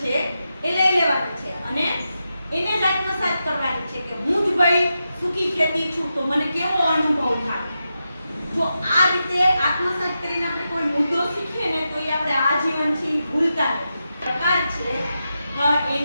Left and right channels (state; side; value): inverted; both; correlation -0.88